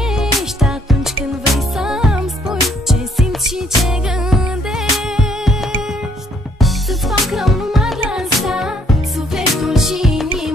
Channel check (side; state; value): both; normal; correlation 0.66